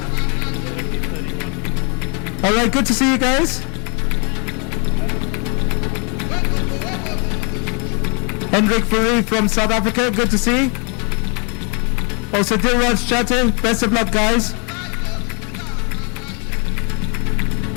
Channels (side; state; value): right; quieter; 35.4 dB